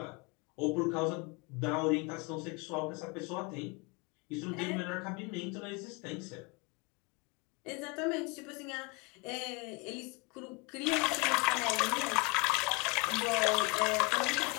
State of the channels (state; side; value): quieter; right; 29.5 dB